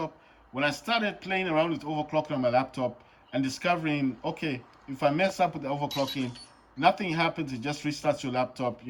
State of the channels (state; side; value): identical; both; correlation 1.00